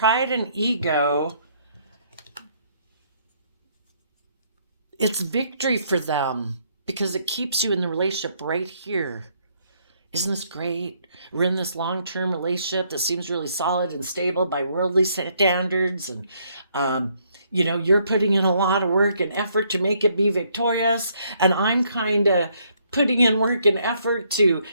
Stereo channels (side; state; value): both; inverted; correlation -0.70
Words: and ego, it's victory for them because it keeps you in the relationship right here. Isn't this great? We're in this long-term relationship that seems really solid and stable by worldly standards. And, you're putting in a lot of work and effort to make it be victorious. And I'm kind of putting in work and effort to